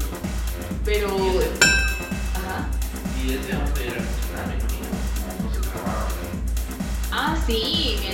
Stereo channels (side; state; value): both; identical; correlation 1.00